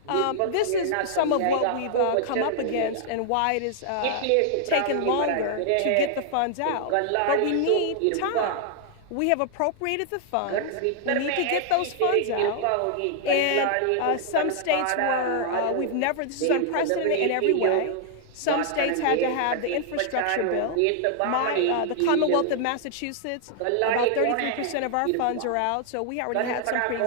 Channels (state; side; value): different; both; correlation 0.00